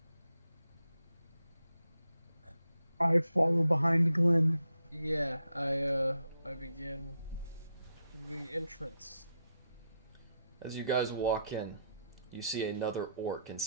I follow behind Glenn. Yeah, I begin the entrance. As you guys walk in, you see another orc in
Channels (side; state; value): both; inverted; correlation -0.81